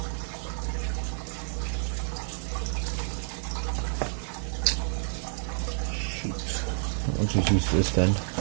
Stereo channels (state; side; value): silent; left; 58 dB below the other